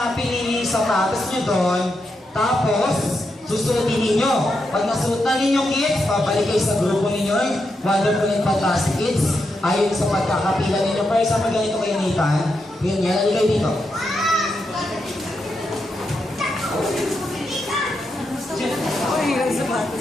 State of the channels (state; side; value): normal; both; correlation 0.84